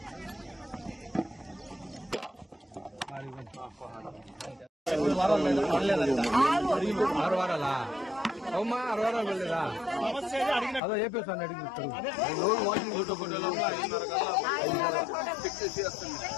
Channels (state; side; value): drops out; right; at 10.8 s